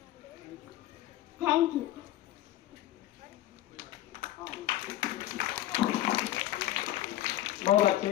thank you. बहुत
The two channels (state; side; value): quieter; right; 14.3 dB